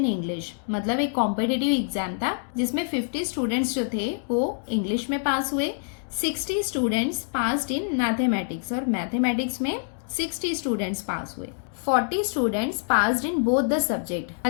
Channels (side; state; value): right; silent; digital silence